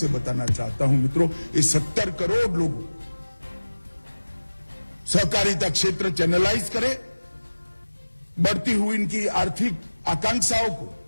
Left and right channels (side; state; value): both; inverted; correlation -1.00